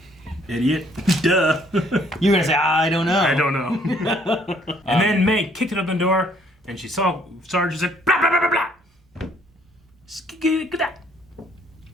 Idiot. Duh. You were going to say, I don't know. I don't know. And then May kicked it up the door and she saw Sarge and said, blah, blah, blah, blah, blah.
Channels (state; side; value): normal; both; correlation 0.63